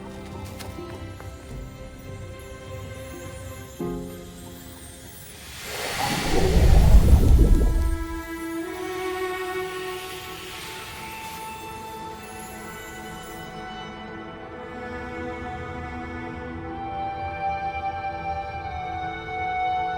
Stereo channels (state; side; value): identical; both; correlation 1.00